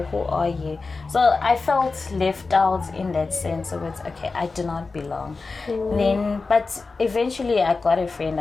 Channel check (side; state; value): right; quieter; 4.0 dB